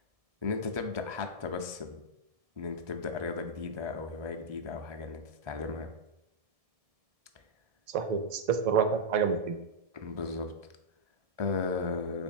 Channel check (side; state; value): left; late; 1.7 ms